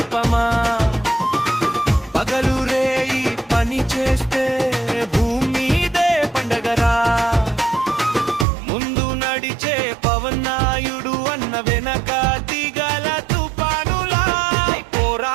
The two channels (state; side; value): drops out; left; at 8.5 s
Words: పగలు రేయి పని చేస్తే ముందు నడిచే పవన్నాయుడు అన్న వెనక దిగల తుపానులా